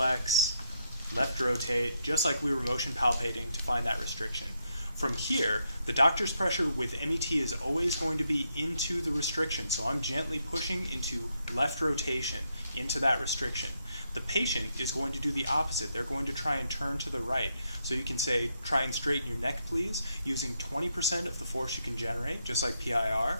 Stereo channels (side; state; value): both; inverted; correlation -0.79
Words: left rotate, just like we were motion palpating to find that restriction. From here, the doctor's pressure with MET is always going to be into the restriction. So I'm gently pushing into left rotation, into that restriction. The patient is going to do the opposite. They're going to try and turn to the right. So you can say, try and straighten your neck, please, using 20% of the force you can generate, just like